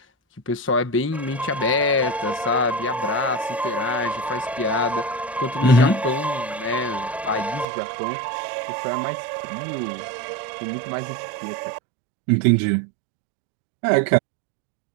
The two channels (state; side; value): drops out; left; at 7.7 s